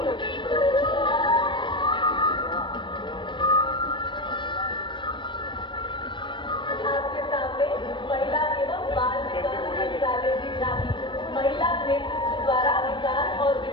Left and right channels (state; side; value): late; right; 0.23 ms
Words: आपके सामने महिला एवं बाल विकास मंत्रालय की झांकी, महिला नेतृत्व द्वारा विकास और